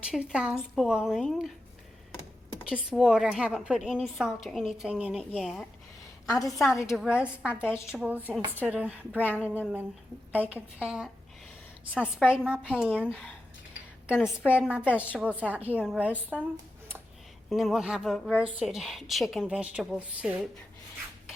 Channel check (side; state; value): both; normal; correlation 0.90